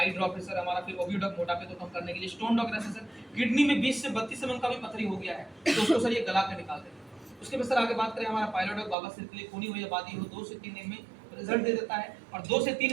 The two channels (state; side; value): drops out; left; at 9.0 s